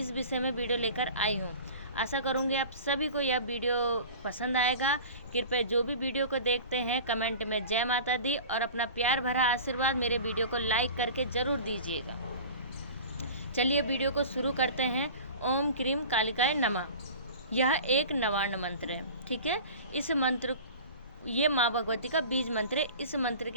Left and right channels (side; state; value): both; inverted; correlation -0.38